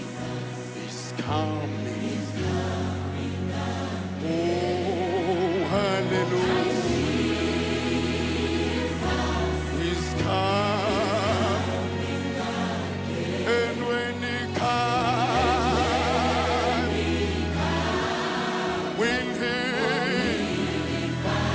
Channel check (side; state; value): both; identical; correlation 1.00